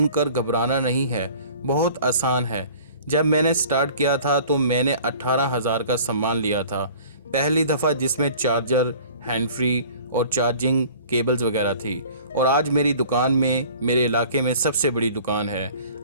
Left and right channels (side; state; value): both; inverted; correlation -0.47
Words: घबराना नहीं है, बहुत आसान है। जब मैंने स्टार्ट किया था तो मैंने 18,000 का सामान लिया था पहली दफ़ा, जिसमें चार्जर, हैंड फ्री और चार्जिंग केबल्स वगैरह थी। और आज मेरी दुकान में मेरे इलाके में सबसे बड़ी दुकान है।